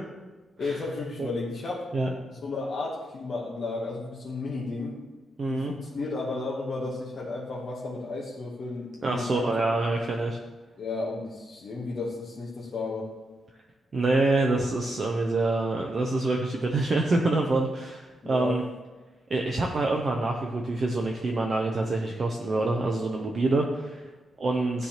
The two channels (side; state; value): both; normal; correlation 0.83